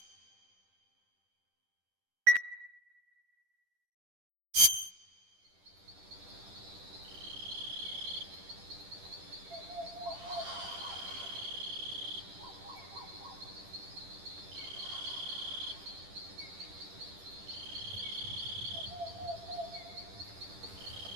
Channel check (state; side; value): late; left; 10 ms